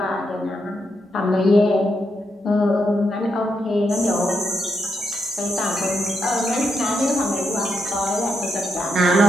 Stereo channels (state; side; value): normal; both; correlation 0.82